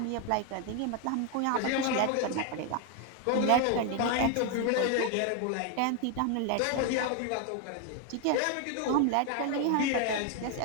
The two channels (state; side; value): different; both; correlation 0.01